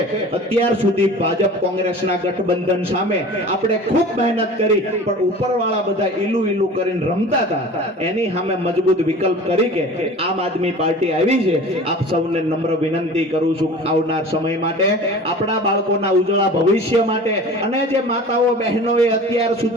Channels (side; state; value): both; normal; correlation 0.40